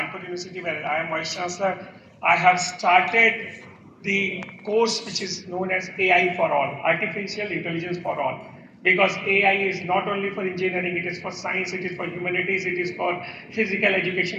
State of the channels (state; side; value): identical; both; correlation 1.00